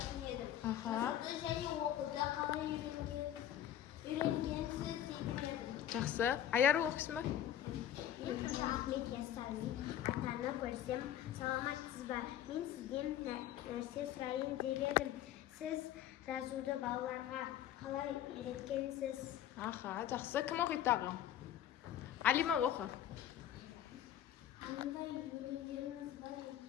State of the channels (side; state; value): right; quieter; 11.3 dB